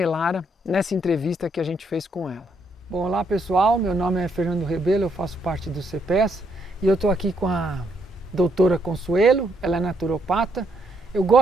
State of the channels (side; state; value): both; normal; correlation 0.74